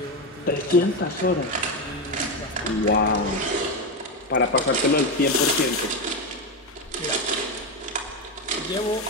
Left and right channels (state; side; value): normal; both; correlation 0.11